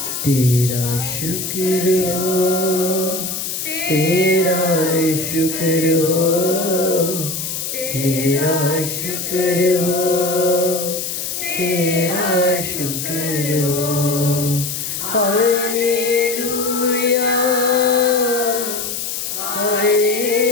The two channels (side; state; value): left; noise; hiss, 4 dB below the sound